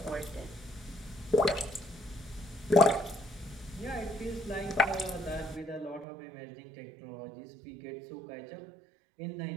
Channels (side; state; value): left; drops out; at 6.1 s